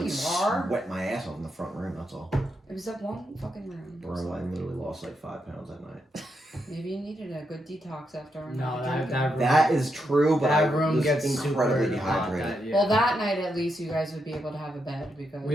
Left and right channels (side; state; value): both; normal; correlation 0.82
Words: like you are. sweat my ass off in the front room. That's all. it was that one fucking room. Bro, I literally lost like 5 pounds that night. Maybe you needed a good detox after a No, night that drinking. room, That is true, but I that room was gets incredibly super hot. dehydrated. Yeah. Well, that night at least you guys would be able to have a bed because